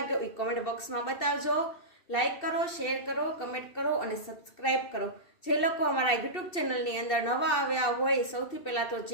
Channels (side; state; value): right; late; 2.7 ms